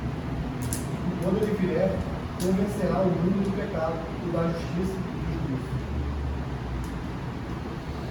Quando ele vier, convencerá o mundo do pecado, e da justiça e do juízo.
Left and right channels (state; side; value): identical; both; correlation 1.00